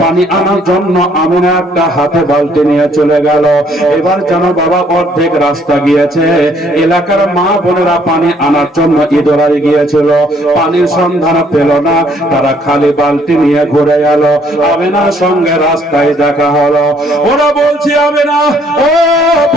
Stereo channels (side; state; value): both; normal; correlation 0.64